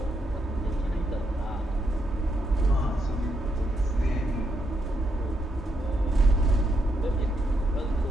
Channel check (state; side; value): normal; both; correlation 0.79